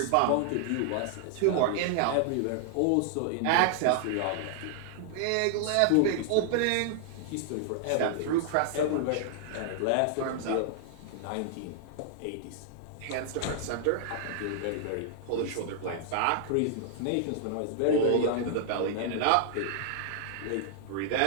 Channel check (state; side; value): different; both; correlation 0.00